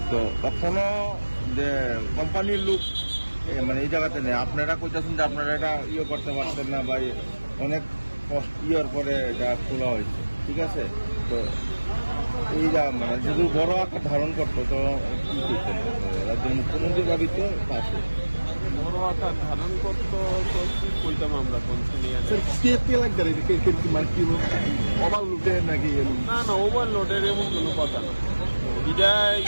তো কখনো যে কোম্পানির লোক মানে এই জায়গাতে নেই আপনারা কইতেছেন যে আপনারা এটা ইয়ে করতে পারতেন না বা অনেক ইয়ের পরে এটা খোলা হয়েছে ঠিক আছে তো এই যা মানে যদি বড় আকার ধারণ করতো তো কি করতেন রাজ্যের মুখ্যমন্ত্রীর বাড়ি তো পাশে বড় আকার ধারণ করতো তো কি কইতাম আমরা কনসিনিয়া না না ওভারলোডের এমন কোনো কথা না এটা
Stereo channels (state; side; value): inverted; both; correlation -1.00